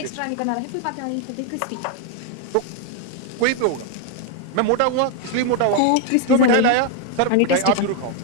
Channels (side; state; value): both; different; correlation 0.01